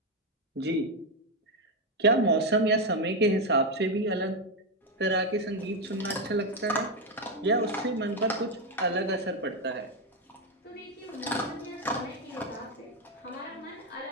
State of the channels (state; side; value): normal; both; correlation 0.08